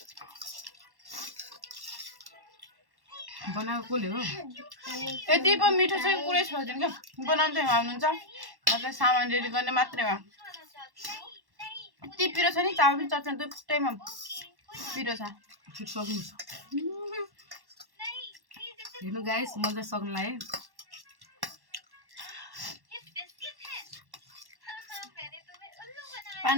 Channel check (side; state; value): left; late; 1.1 ms